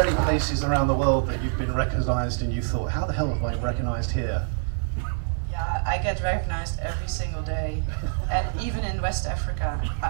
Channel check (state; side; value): silent; left; digital silence